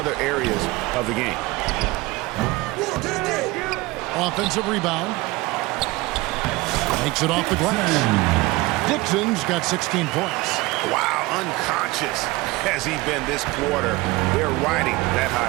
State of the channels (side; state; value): left; quieter; 21.3 dB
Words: areas of the game. Offensive rebound. Makes it off the glass. Dixon's got 16 points. Wow, unconscious has he been this quarter. They're riding that